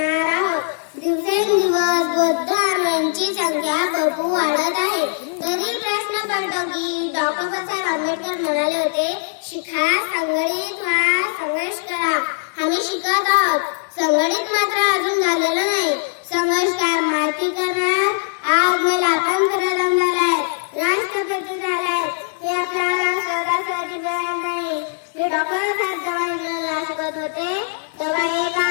आहोत. दिवसेंदिवस बौद्ध धर्मांची संख्या भरपूर वाढत आहे. तरी प्रश्न पडतो की डॉक्टर बाबासाहेब आंबेडकर म्हणाले होते, शिका, संघटित व्हा, संघर्ष करा. आम्ही शिकत आहोत, संघटित मात्र अजून झालेलं नाही. संघर्ष काय माहिती करणार, आज मला स्वातंत्र्य झालाय, राष्ट्रपती झालाय, हे आपल्याला सहजासहजी मिळणार नाही. मी डॉक्टर साहेब जेव्हा इंग्रजीला शिकत होते तेव्हा एका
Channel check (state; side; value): silent; right; digital silence